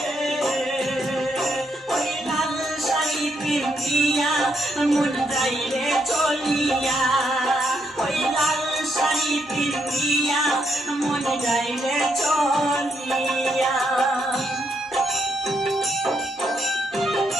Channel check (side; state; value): both; normal; correlation 0.77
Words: পিন্দিয়া মন যাইবে চলিয়া, ওই লাল শাড়ি পিন্দিয়া মন যাইবে চলিয়া।